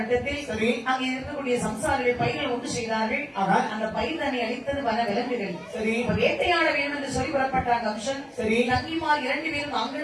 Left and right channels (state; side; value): identical; both; correlation 1.00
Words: அங்கே இருக்கக்கூடிய சம்சாரிகள் பயிர்கள் ஒன்று செய்தார்கள். அந்த பயிர் தன்னை அளித்தது வன விலங்குகள். வேட்டையாட வேண்டும் என்று சொல்லி புறப்பட்டார் கம்சன். தங்கிமார் 2 பேரும்